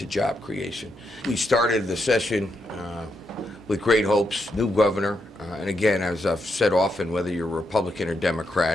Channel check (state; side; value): normal; both; correlation 0.81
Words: job creation. We started the session with great hopes, new governor, and again, as I've said often, whether you're Republican or